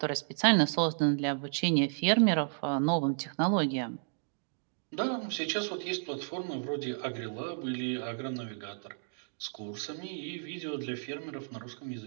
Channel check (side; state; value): left; silent; digital silence